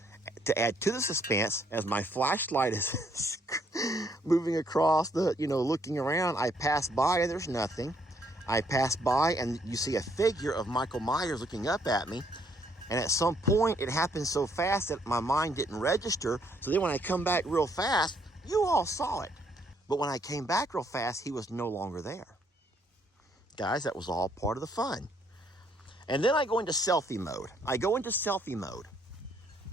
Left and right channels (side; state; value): both; normal; correlation 0.69